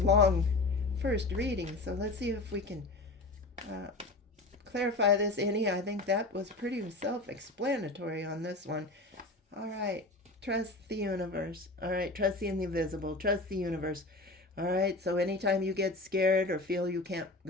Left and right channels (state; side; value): quieter; right; 3.0 dB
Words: first reading. So let's see if we can clarify this any. I think that was pretty self-explanatory on this one. All right. Trust the universe. All right. Trust the invisible. Trust the universe. All right. So anytime you get scared or feel you can't